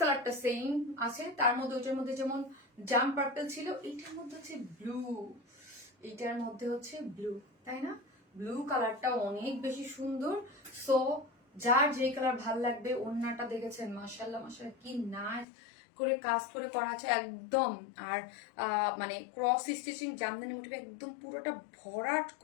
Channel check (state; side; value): drops out; right; at 15.5 s